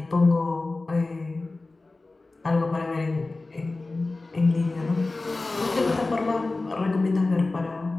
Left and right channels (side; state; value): right; quieter; 3.3 dB